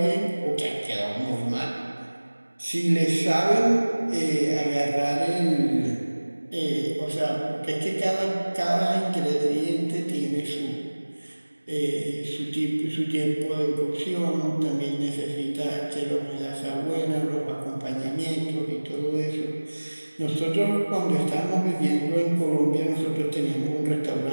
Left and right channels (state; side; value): inverted; both; correlation -1.00